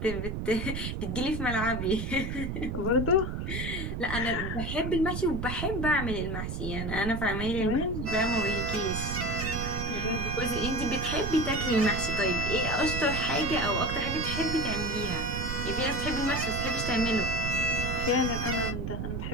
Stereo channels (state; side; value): noise; right; rumble, 3 dB below the sound